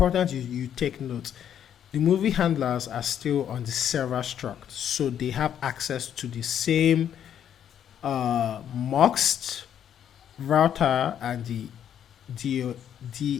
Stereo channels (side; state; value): right; quieter; 9.5 dB